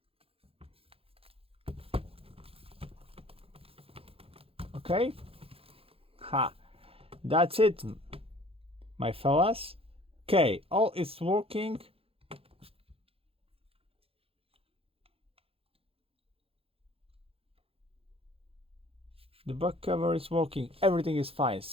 Okay, that's it, my fellas. Okay, all is working. The back cover is working, everything is fine.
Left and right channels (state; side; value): late; left; 0.27 ms